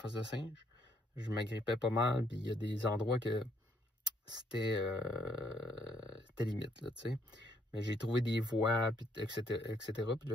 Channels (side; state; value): both; normal; correlation 0.70